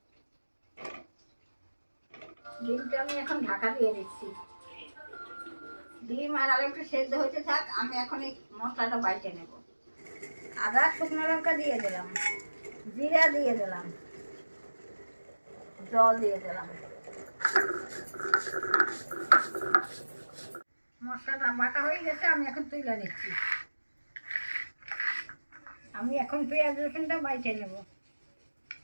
ডিমটা আমি এখন ঢাকা দিয়ে দিচ্ছি। ডিম আর আলুটা সেদ্ধ হতে থাক, আমি এখন এই মশলাটা বাইটে নেব। আদা শুকনো লঙ্কা দিয়ে দিলাম, জিরা দিয়ে দিলাম, জল দিয়ে দিলাম। মশলাটা বাটা হয়ে গেছে, আমি এখন তুলে নিচ্ছি। আমি এখন পেঁয়াজ রসুনটা বাইটে নেব।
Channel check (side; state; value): both; inverted; correlation -1.00